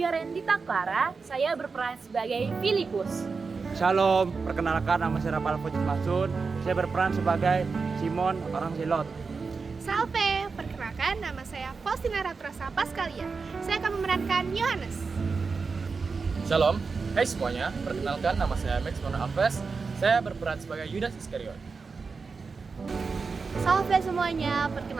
Clara, saya berperan sebagai Filipus. Shalom, perkenalkan nama saya Rafael Fujit Masun, saya berperan sebagai Simon orang Silot. Salve, perkenalkan nama saya Faustina Ratrosa Paskalia, saya akan memerankan Yohanes. Shalom, hai semuanya, perkenalkan nama saya Max Mono Alves, saya berperan sebagai Yudas Iskariot. Salve semuanya,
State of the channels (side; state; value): left; quieter; 4.7 dB